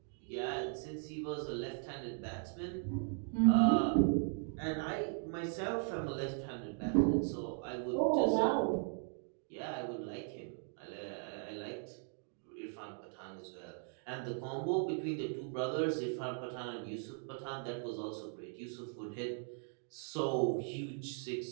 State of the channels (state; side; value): silent; left; 52 dB below the other